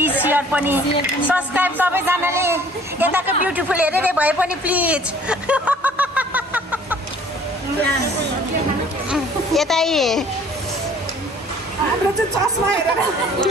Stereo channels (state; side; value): normal; both; correlation 0.54